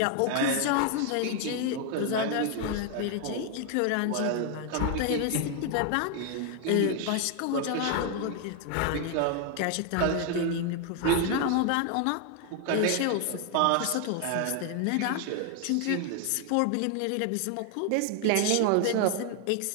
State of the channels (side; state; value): both; different; correlation 0.00